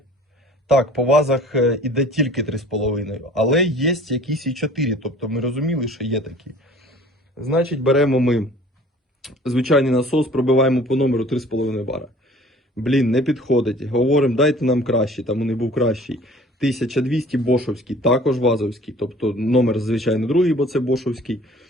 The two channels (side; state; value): both; normal; correlation 0.49